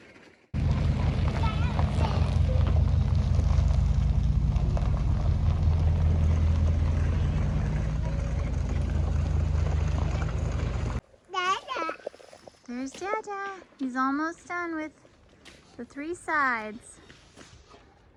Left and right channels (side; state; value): both; identical; correlation 1.00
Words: There's Dada. He's almost done with the 3 sides.